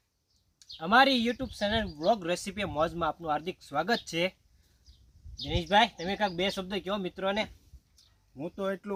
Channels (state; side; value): identical; both; correlation 1.00